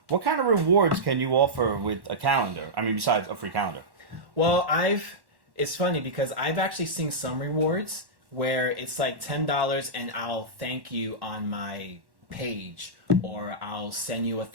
What kind of rewards can you offer with a calendar? I mean, besides a free calendar. Well, it's funny because I've actually seen some rewards where it's like $10 and I'll thank you on my page, or I'll send you a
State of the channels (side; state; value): left; late; 1.1 ms